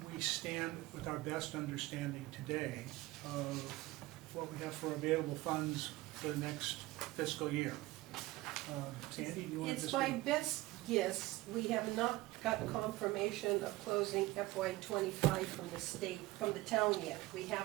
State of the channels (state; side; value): quieter; left; 19.0 dB